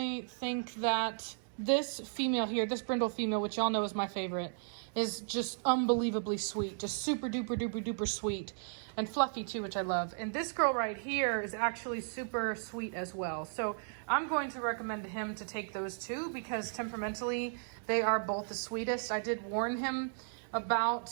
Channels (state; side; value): silent; left; digital silence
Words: think that this female here, this brindle female, which y'all know is my favorite, is just unbelievably sweet, just super duper duper duper sweet, and fluffy too, which I love. And this girl right here is actually super sweet as well. So I'm going to recommend him to take those two because temperamentally they are both the sweetest. I did warn him about